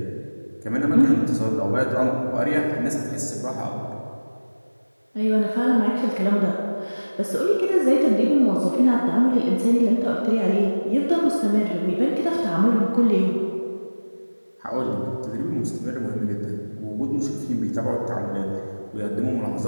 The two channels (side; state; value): both; inverted; correlation -1.00